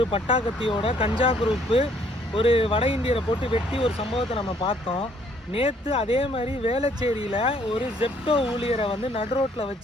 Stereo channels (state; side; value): normal; both; correlation 0.64